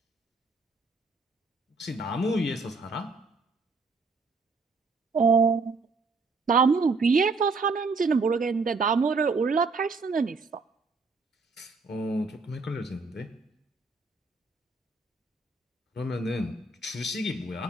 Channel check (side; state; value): left; quieter; 4.0 dB